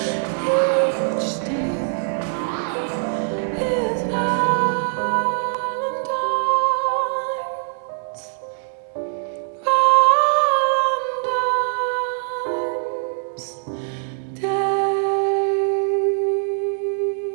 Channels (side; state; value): left; silent; digital silence